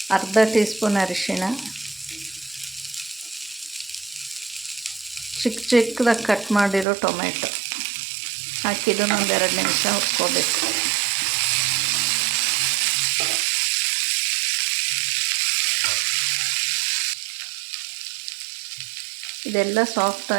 ಅರ್ಧ ಟೀ ಸ್ಪೂನ್ ಅರಿಶಿಣ, ಚಿಕ್ಕದಾಗಿ ಕಟ್ ಮಾಡಿರೋ ಟೊಮೆಟೊ ಹಾಕಿದ್ದನ್ನು ಒಂದೆರಡು ನಿಮಿಷ ಹುರ್ಕೋಬೇಕು. ಇದೆಲ್ಲ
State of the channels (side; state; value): left; drops out; at 6.9 s